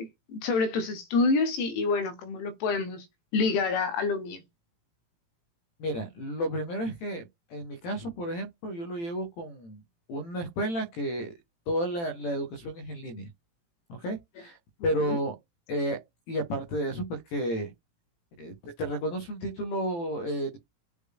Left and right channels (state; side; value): late; right; 18 ms